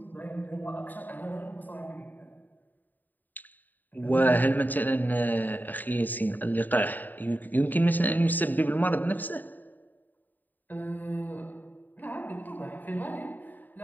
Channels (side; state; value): right; late; 0.087 ms